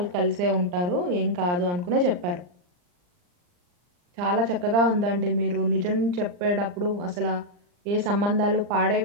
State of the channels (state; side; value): late; left; 39 ms